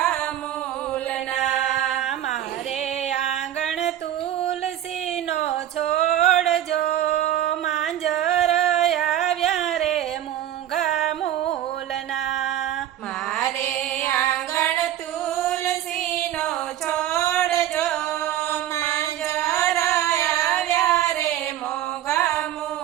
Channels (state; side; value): quieter; left; 11.9 dB